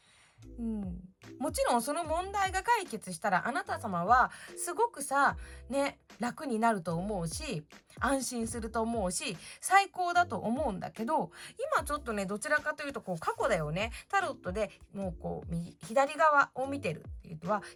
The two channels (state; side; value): identical; both; correlation 1.00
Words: もちろんその問題が解決したら、あなた様はすごくさね、楽になると思うし、安心すると思うし、最高だと思うんだけど、今ちょっとねどちらかというとこう過去だよね。タロットでもうこう左側を見てるっていうのは、